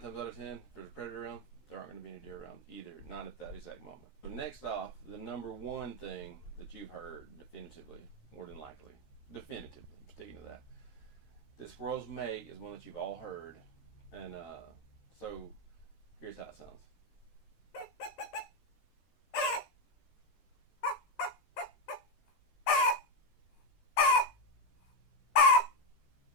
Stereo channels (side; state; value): right; late; 13 ms